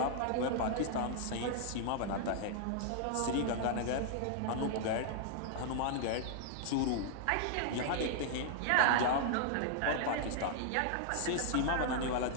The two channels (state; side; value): different; both; correlation -0.01